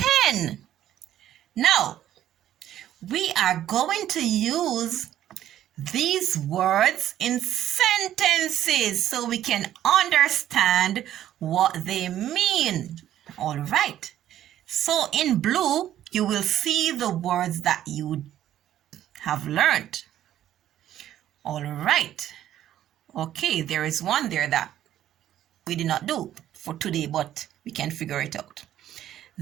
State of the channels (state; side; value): quieter; left; 11.9 dB